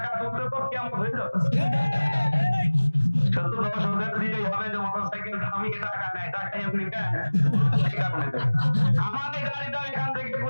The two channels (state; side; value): inverted; both; correlation -1.00